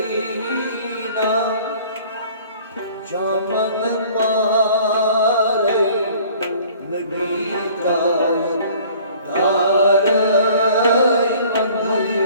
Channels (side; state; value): both; inverted; correlation -0.52